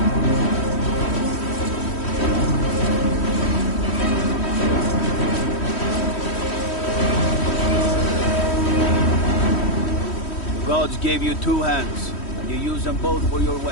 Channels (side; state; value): right; late; 3.1 ms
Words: Gods gave you two hands, and you use them both for your